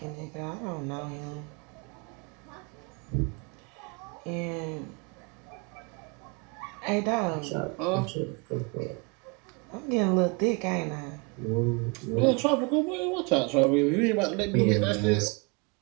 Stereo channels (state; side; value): quieter; left; 31.4 dB